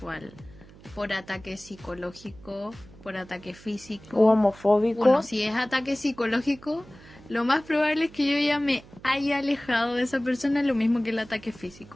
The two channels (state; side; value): noise; right; hum, 22 dB below the sound